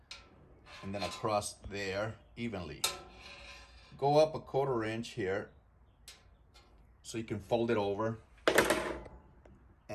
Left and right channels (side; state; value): both; identical; correlation 1.00